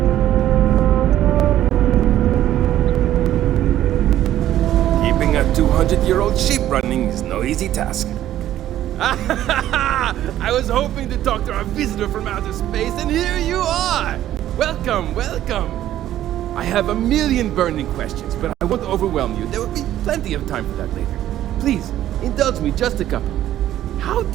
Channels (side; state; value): left; quieter; 12.6 dB